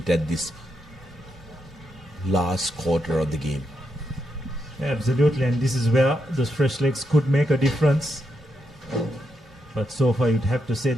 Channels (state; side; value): normal; both; correlation 0.82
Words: at this last quarter of the game. Absolutely, and this is where those fresh legs could make a difference. But so far, you'd have to say